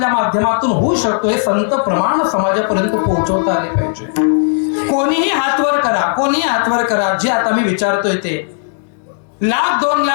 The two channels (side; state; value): right; silent; digital silence